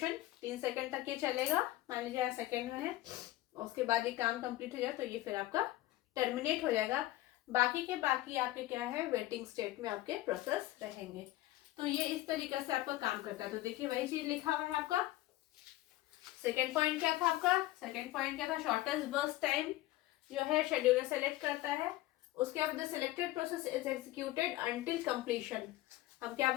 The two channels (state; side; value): quieter; right; 16.6 dB